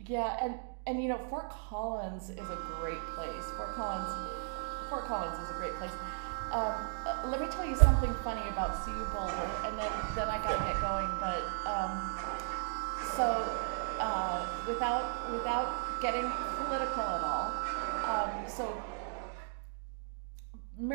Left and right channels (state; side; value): silent; left; digital silence